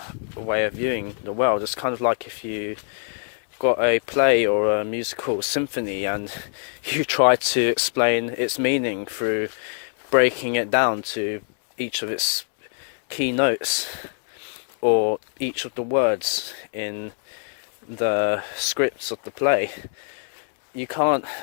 way of viewing the world. It's kind of like if you got a play or a musical symphony and you try to explain its meaning through breaking it down to each of its key notes or each of the words in the scripts of the play. You can't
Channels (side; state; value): right; silent; 62 dB below the other